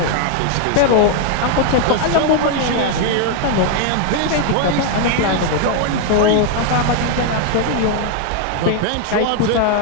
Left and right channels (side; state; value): both; different; correlation 0.00